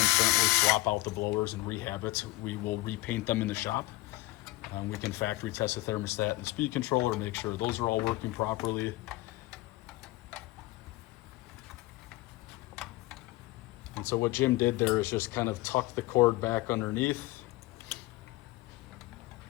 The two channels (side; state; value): right; quieter; 19.3 dB